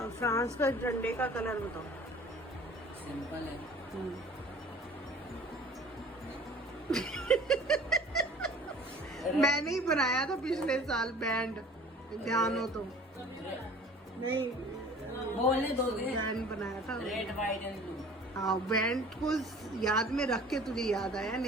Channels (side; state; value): both; normal; correlation 0.46